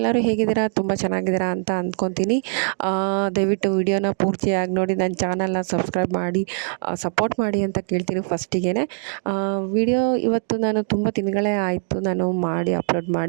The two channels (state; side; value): silent; left; digital silence